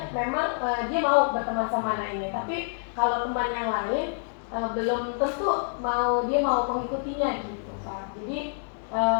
memang dia mau berteman sama anak ini, tapi kalau teman yang lain belum tentu dia mau mengikutinya gitu Pak. Jadi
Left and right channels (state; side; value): silent; right; digital silence